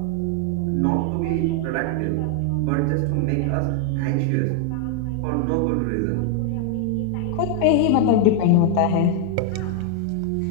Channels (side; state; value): both; different; correlation 0.00